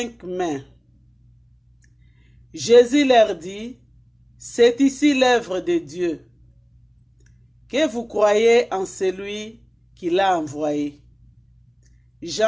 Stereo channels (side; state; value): both; identical; correlation 1.00